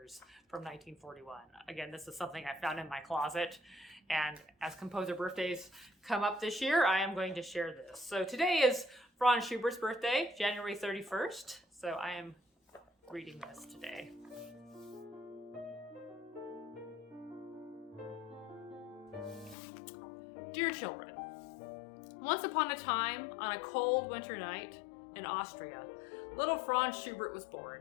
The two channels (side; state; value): right; drops out; at 19.6 s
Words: from 1941. Again, this is something I found in my closet, and as composer birthdays come up this year, I am going to share this. So today is Franz Schubert's birthday, January 31st, so I am reading this today. Dear children, once upon a time, on a cold winter night in Austria, little Franz Schubert was